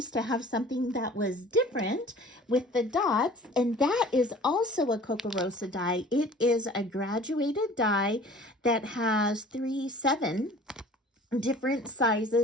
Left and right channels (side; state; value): both; normal; correlation 0.47